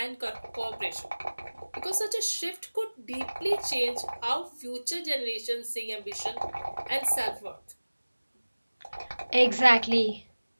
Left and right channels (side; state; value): both; inverted; correlation -1.00